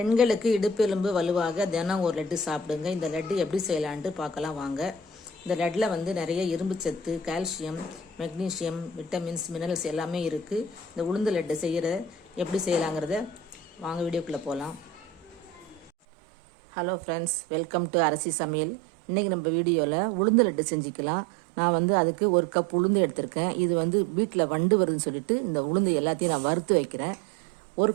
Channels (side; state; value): left; drops out; at 15.9 s